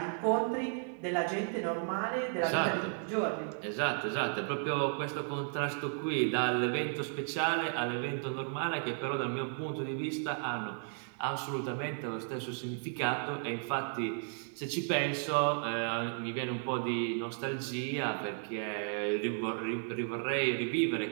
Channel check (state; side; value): silent; left; 55 dB below the other